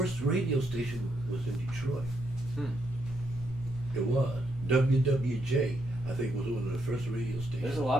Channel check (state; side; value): normal; both; correlation 0.77